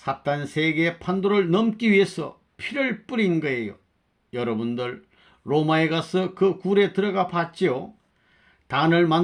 세계의 판도를 넘기 위해서 피를 뿌린 거예요. 여러분들 로마에 가서 그 굴에 들어가 봤지요? 단을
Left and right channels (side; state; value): both; identical; correlation 1.00